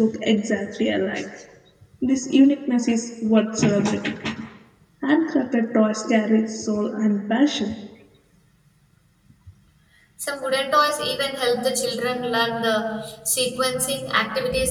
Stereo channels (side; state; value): both; identical; correlation 1.00